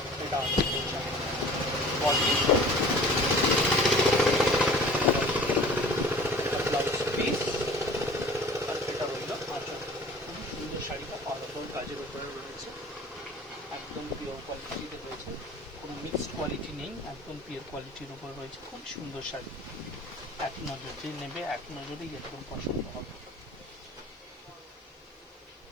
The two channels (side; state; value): both; normal; correlation 0.45